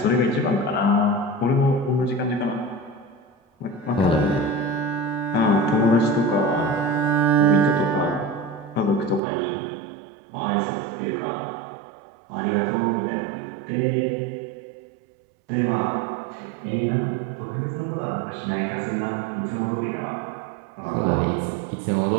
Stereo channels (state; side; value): drops out; left; at 9.2 s